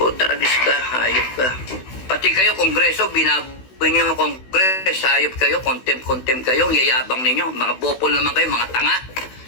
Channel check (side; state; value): right; late; 16 ms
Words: ka, hayop ka. Pati kayo, Kongreso, binaboy nyo yung Kongres, hayop kayo, contempt kayo, yayabang ninyo. Mga bopol naman kayo, mga tanga.